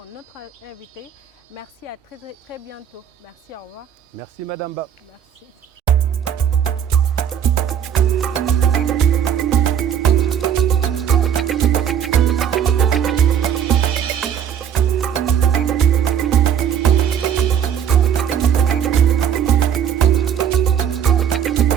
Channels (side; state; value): left; quieter; 8.7 dB